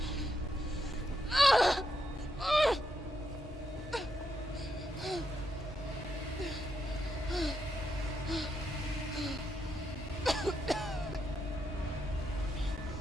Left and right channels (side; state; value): both; normal; correlation 0.81